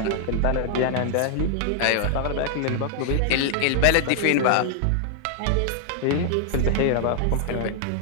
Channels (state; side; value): different; both; correlation 0.00